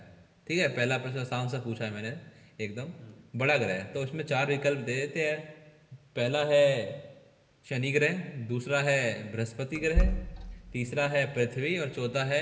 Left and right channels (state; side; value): identical; both; correlation 1.00